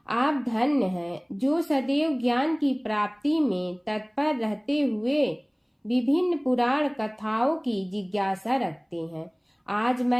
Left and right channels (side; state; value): both; identical; correlation 1.00